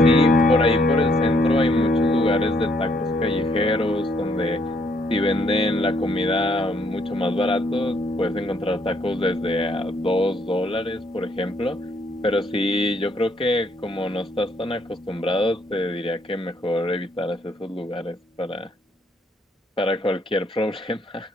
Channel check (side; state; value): both; normal; correlation 0.69